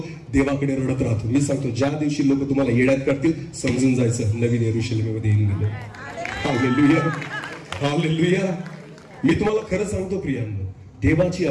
देवाकडे रडत राहतो. मी सांगतो, ज्या दिवशी लोक तुम्हाला येड्यात करतील, समजून जायचं नवीन यरुशलेममध्ये येऊन गेलो. हालेलुया. हालेलुया. मी तुम्हाला खरं सांगतो प्रियांनो, देवाची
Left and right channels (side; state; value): both; identical; correlation 1.00